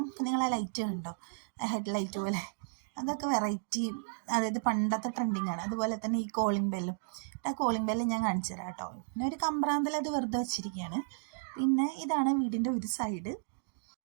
ഇപ്പം നിങ്ങൾ ആ ലൈറ്റ് കണ്ടോ, ഹെഡ് ലൈറ്റ് പോലെ, അതൊക്കെ വെറൈറ്റി, അതായത് പണ്ടത്തെ ട്രെൻഡിങ് ആണ്. അതുപോലെ തന്നെ ഈ കോളിംഗ് ബെല്ലും, ആ കോളിംഗ് ബെല്ല് ഞാൻ കാണിച്ചു തരാം കേട്ടോ. പിന്നെ ഒരു കമ്പ്രാന്തൽ അത് വെറുതെ വെച്ചിരിക്കുകയാണ്. പിന്നെ ഇതാണ് വീടിൻ്റെ ഒരു സൈഡ്.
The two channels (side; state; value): left; silent; digital silence